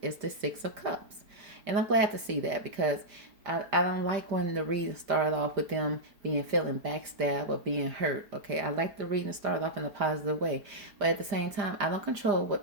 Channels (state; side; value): late; left; 5.0 ms